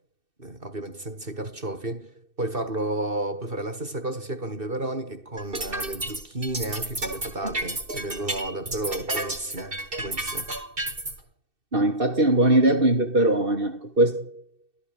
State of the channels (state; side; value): late; left; 2.6 ms